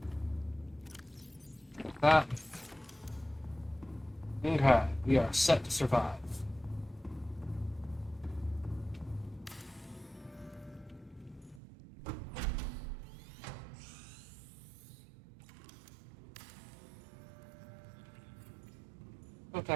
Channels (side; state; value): left; drops out; at 11.6 s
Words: Like that. Okay, we are set to survive. Don't